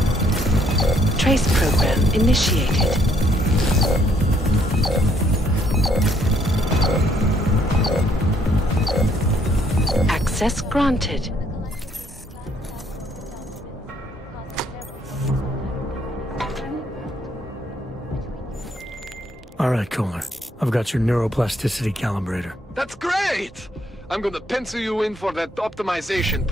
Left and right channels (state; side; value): normal; both; correlation 0.68